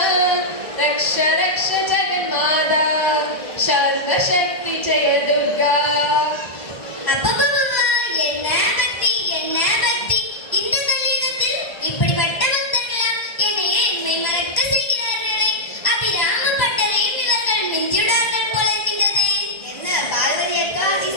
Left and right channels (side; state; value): right; late; 1.0 ms